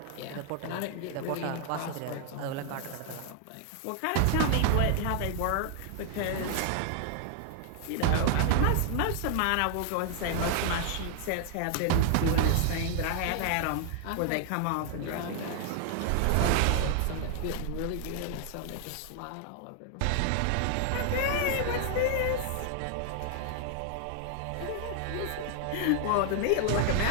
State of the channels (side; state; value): both; different; correlation 0.00